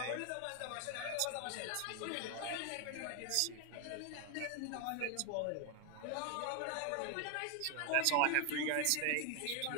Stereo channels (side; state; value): both; different; correlation 0.00